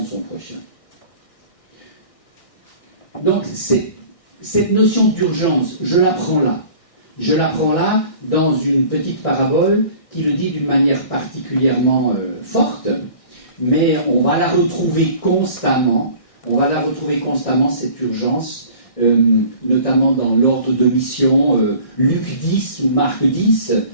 de son prochain. Donc, cette notion d'urgence, je la prends là. Je la prends là dans une petite parabole qui le dit d'une manière particulièrement forte, mais on va la retrouver constamment. On va la retrouver constamment, cette urgence, notamment dans l'ordre de mission, Luc 10 ou Marc 10,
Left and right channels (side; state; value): right; late; 1.6 ms